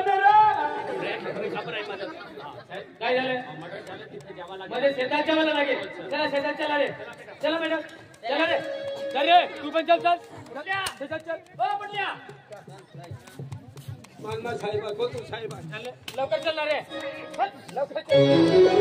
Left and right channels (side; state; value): both; identical; correlation 1.00